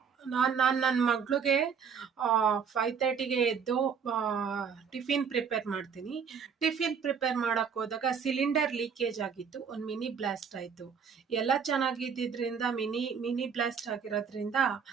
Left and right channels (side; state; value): left; quieter; 6.6 dB